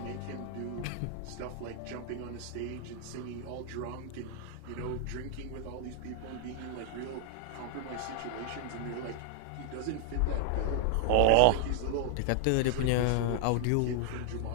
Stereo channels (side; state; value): both; different; correlation 0.00